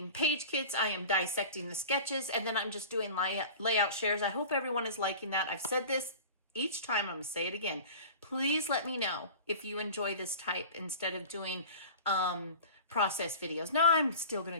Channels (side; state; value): both; inverted; correlation -0.38